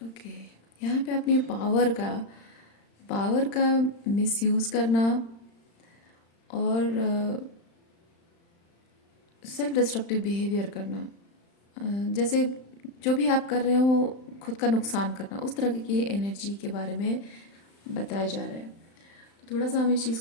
Okay, यहाँ पे अपनी पावर का मिसयूज़ करना और सेल्फ डिस्ट्रक्टिव बिहेवियर करना, जैसे जो भी आप कर रहे हो खुद का नुकसान करना, उस तरह की एनर्जी के बारे में बताया जा रहा है। तो थोड़ा सा हम इस चीज़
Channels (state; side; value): late; right; 35 ms